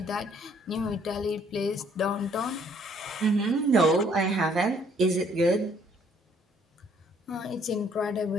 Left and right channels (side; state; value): both; normal; correlation 0.63